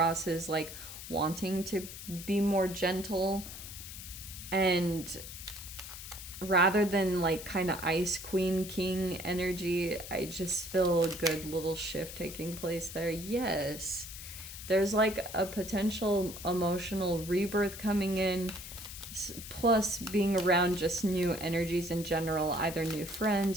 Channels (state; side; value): noise; left; hiss, 11 dB below the sound